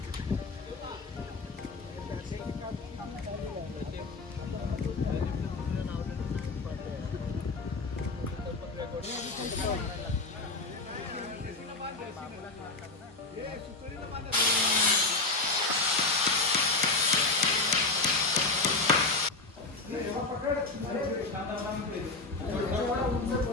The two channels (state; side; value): quieter; right; 3.5 dB